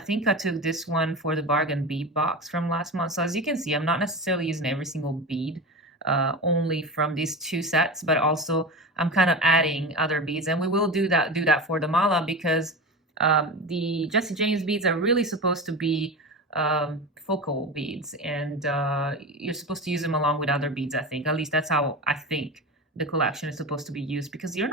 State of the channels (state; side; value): normal; both; correlation 0.26